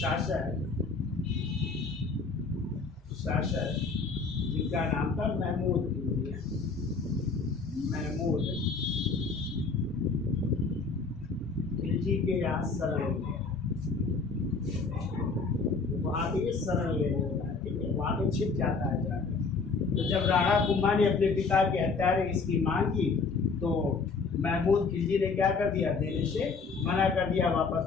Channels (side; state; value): right; quieter; 4.5 dB